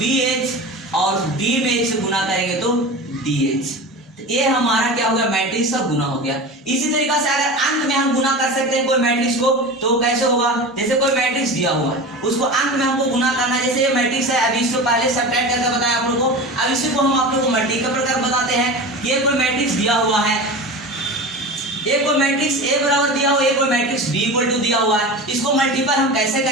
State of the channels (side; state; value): both; normal; correlation 0.30